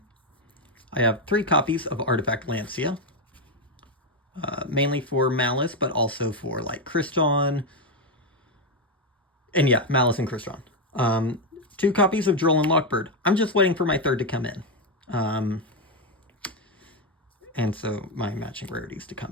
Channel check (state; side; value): normal; both; correlation 0.06